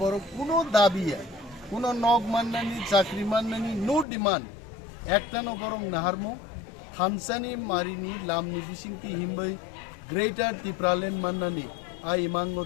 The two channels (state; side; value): drops out; right; at 4.0 s